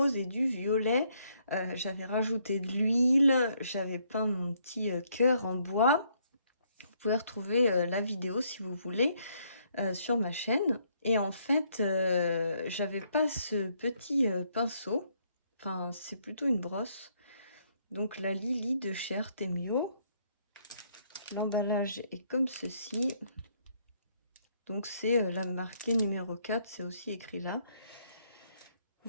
et du violet, j'avais rajouté de l'huile, j'avais peint mon petit cœur en bois. Vous pouvez retrouver la vidéo si vous voulez sur ma chaîne. Et en fait, j'avais pas ce petit pinceau. Enfin, c'est plutôt une brosse. Donc la Lily de chez Artemio. L'emballage est comme ceci. Donc c'est la marquée numéro 4, c'est aussi écrit là.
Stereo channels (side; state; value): both; inverted; correlation -0.70